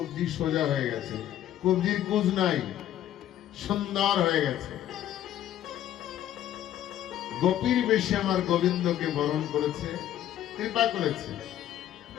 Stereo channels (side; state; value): right; quieter; 11.8 dB